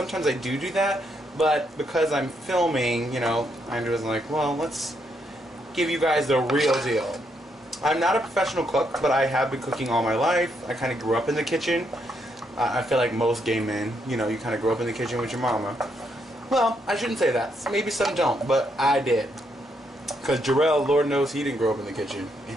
I do that, but because I'm filming, you know, I was like, well, let's give you guys the real deal. I'm not a professional cook, but I have been cooking all my life. I kind of grew up in the kitchen. I feel like most gay men, you know, you kind of grow up in the kitchen with your mama. Well, I shouldn't say that. Maybe some don't, but I did. Because Jarrell, Lord knows he didn't grow up in the kitchen, and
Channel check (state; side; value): normal; both; correlation 0.77